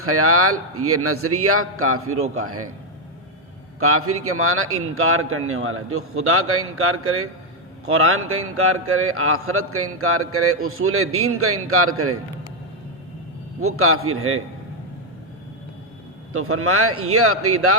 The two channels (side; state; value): both; normal; correlation 0.02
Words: یہ نظریہ کافروں کا ہے. کافر کے معنی انکار کرنے والا. جو خدا کا انکار کرے، قرآن کا انکار کرے، آخرت کا انکار کرے، اصول دین کا انکار کرے، وہ کافر ہے. تو فرمایا یہ عقیدہ